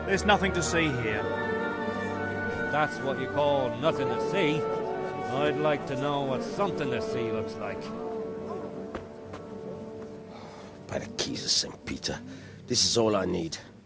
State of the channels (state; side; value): identical; both; correlation 1.00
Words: There's nothing to see here. That's what you call nothing to see. I'd like to know what something to see looks like. By the keys of St. Peter, this is all I need.